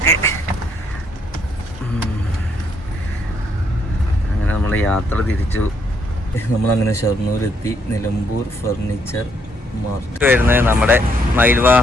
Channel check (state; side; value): normal; both; correlation 0.72